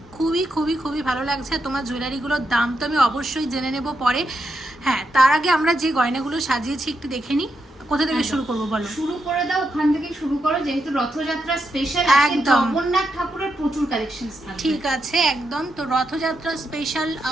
খুবই খুবই খুবই ভালো লাগছে। তোমার জুয়েলারিগুলোর দাম তো আমি অবশ্যই জেনে নেব পরে। হ্যাঁ, তার আগে আমরা যে গয়নাগুলো সাজিয়েছি একটু দেখে নিই। কোথা থেকে শুরু করবো বলো? শুরু করে দাও, ওখান থেকে শুরু করো, যেহেতু রথযাত্রা স্পেশাল। একদম, জগন্নাথ ঠাকুরের প্রচুর কালেকশনস থাকবে। ঠিক আছে, একদম। তো রথযাত্রা স্পেশাল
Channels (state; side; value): normal; both; correlation 0.83